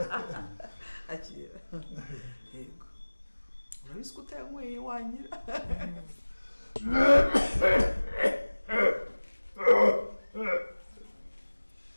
akira yego urabizi ko utanyweye wanyira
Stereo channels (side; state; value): both; inverted; correlation -1.00